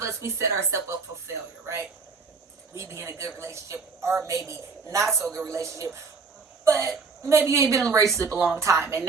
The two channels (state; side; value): quieter; left; 4.7 dB